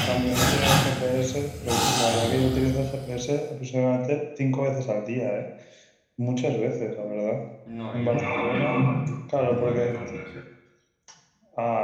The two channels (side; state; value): both; identical; correlation 1.00